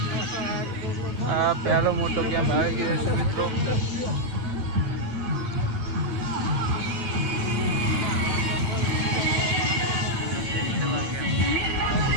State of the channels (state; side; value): late; left; 8.7 ms